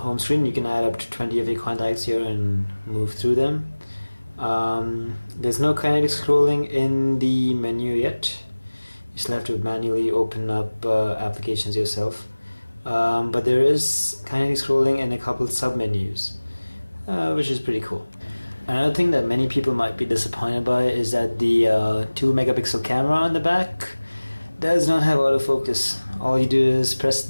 screen. You can add up to 20 of your contacts here and move through them. There's no kinetic scrolling in the menu yet. You still have to manually open up applications yourself. But there is kinetic scrolling in a couple sub-menus, which is pretty cool. Another thing that many people might be disappointed by is that the 2 megapixel camera on the back does not have autofocus. All you do is press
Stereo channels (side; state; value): both; inverted; correlation -1.00